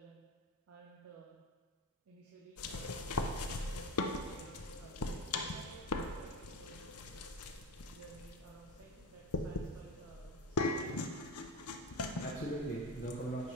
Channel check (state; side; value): normal; both; correlation 0.24